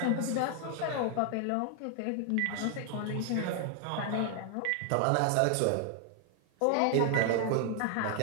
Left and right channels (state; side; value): different; both; correlation 0.00